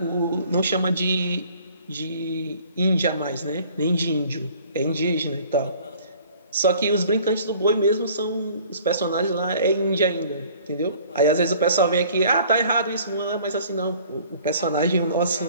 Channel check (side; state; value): both; inverted; correlation -0.53